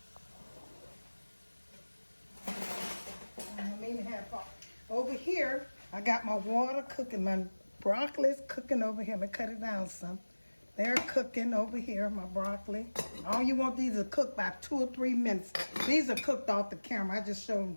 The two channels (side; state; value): both; inverted; correlation -1.00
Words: over here. I got my water cooking. My broccoli is cooking over here. I'm gonna cut it down some. They're cooking over here, my broccoli. All you want these to cook by 2 or 3 minutes. These are cooked off the camera. I just showed them